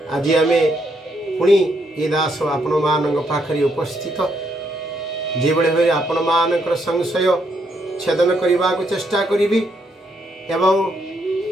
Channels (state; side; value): normal; both; correlation 0.75